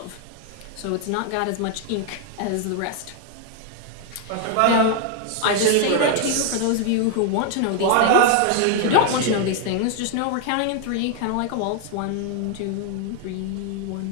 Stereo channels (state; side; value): different; both; correlation 0.00